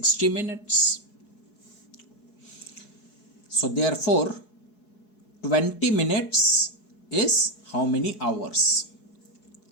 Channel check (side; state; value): right; late; 4.7 ms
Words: minutes. So therefore 20 minutes is how many hours?